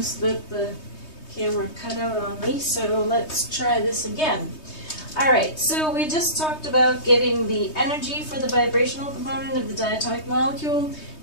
that the camera cut out on me, so let's try this again. Alright, so we just talked about getting the energy for the vibrational component of the diatomic molecule,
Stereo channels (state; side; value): late; right; 3.2 ms